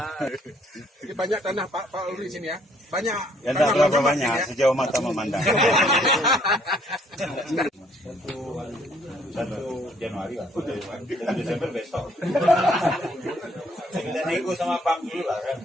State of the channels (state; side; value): normal; both; correlation 0.64